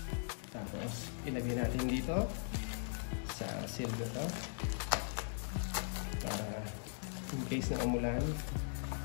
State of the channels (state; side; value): silent; right; digital silence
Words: Tapos ilagay natin dito sa seal na to para in case na umulan